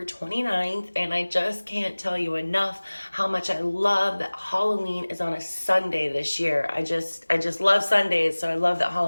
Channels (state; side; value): inverted; both; correlation -1.00